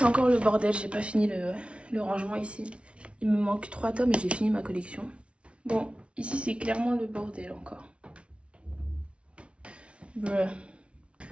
encore le bordel. J'ai pas fini le rangement ici. Il me manque 3 tomes et j'ai fini ma collection. Bon, ici, c'est clairement le bordel encore. Bruh.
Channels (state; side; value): late; left; 0.060 ms